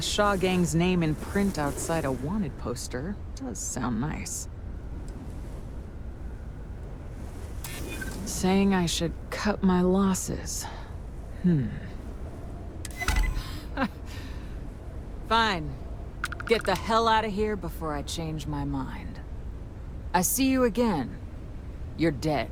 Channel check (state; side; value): identical; both; correlation 1.00